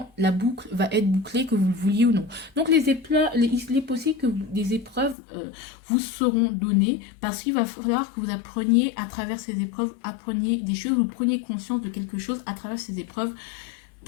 la boucle va être bouclée, que vous le vouliez ou non. Donc il est possible que des épreuves vous seront données, parce qu'il va falloir que vous appreniez à travers ces épreuves, appreniez des choses, vous preniez conscience de quelque chose à travers ces épreuves,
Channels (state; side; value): drops out; right; at 5.2 s